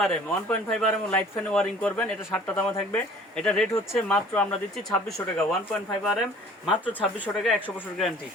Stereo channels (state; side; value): normal; both; correlation 0.50